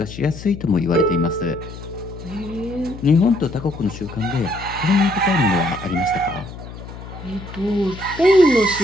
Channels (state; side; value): noise; left; hum, 13 dB below the sound